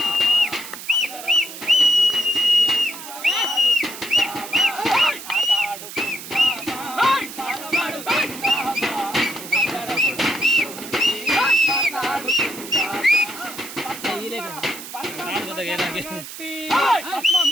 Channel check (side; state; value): right; noise; hiss, 12 dB below the sound